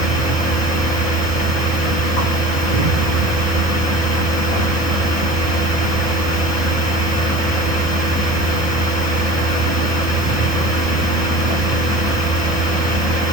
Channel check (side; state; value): right; late; 2.4 ms